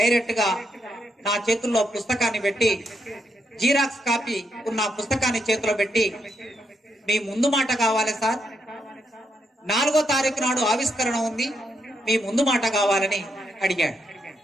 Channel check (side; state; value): both; normal; correlation 0.79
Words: గా నా చేతుల్లో పుస్తకాన్ని పెట్టి, జీరాక్స్ కాపీ ఉన్న పుస్తకాన్ని చేతిలో పెట్టి, మీ ముందు మాట కావాలి సార్, 4వ తారీఖు నాడు ఆవిష్కరణ ఉంది, మీ ముందు మాట కావాలని అడిగాడు.